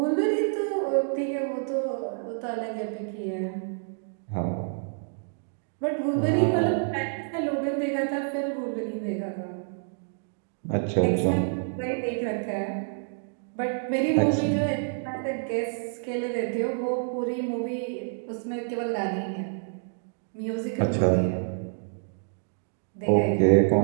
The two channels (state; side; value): silent; left; digital silence